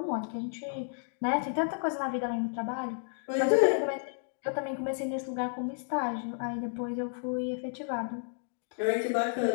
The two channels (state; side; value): silent; right; digital silence